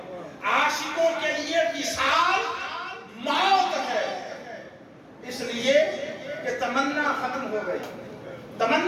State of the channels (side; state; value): both; identical; correlation 1.00